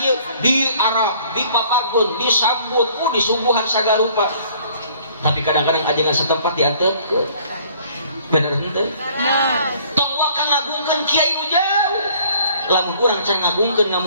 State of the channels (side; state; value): both; inverted; correlation -0.57